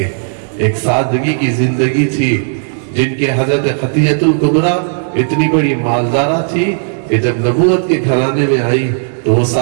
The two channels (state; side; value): silent; left; digital silence